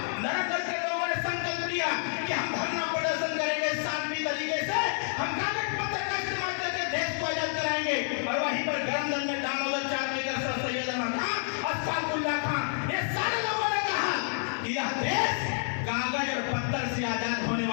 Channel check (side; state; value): right; silent; 58 dB below the other